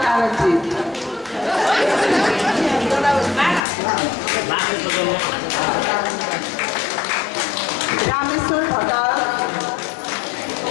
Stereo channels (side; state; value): right; drops out; at 3.7 s